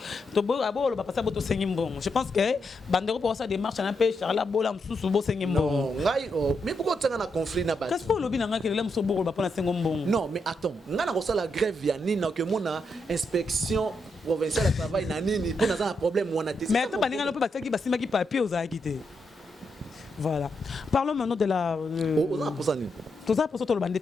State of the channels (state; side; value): normal; both; correlation 0.82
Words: To bo abo ba passer boto sengimbo. Je pense que bandero pour ça démarche na pe Charla bola msusu bo sengimbo. Non, ngai mais pourquoi tu as un conflit na ba? Qu'est-ce que lobi na nga kelele mso bo ba pona sengombo? Non, mais attends, nga na ko ça la grève ya nini que mona inspection provincial de travail nanini pour dans un problème ou on a testé. Mais attends, baninga no pe bataki basima ki papier aux akité. Voilà. Parlons maintenant de la. Tout ça pour ça, tout le monde